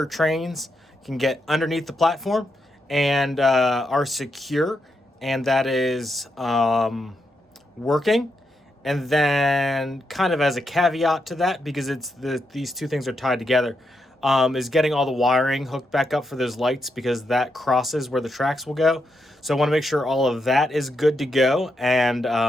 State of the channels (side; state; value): both; normal; correlation 0.83